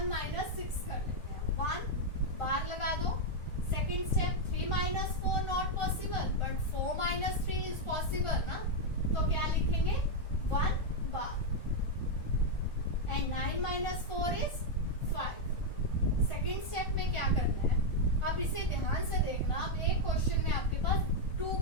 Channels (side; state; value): right; late; 1.4 ms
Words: माइनस 6 कर लेते हैं, 1 बार लगा दो। Second step 3 minus 4 not possible, but 4 minus 3 is possible ना, तो क्या लिखेंगे 1 बार and 9 minus 4 is 5। Second step में क्या करना है, अब इसे ध्यान से देखना। अब एक क्वेश्चन में आपके पास 2